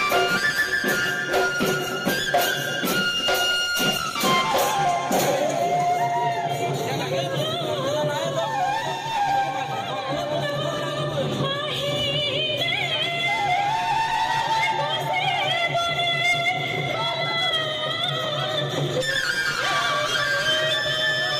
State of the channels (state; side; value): identical; both; correlation 1.00